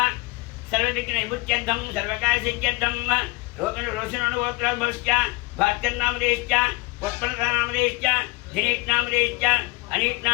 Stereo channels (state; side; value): quieter; right; 24.1 dB